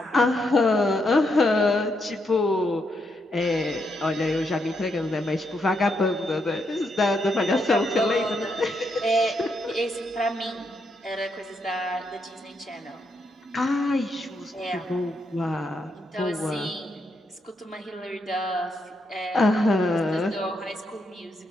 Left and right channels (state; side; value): normal; both; correlation 0.79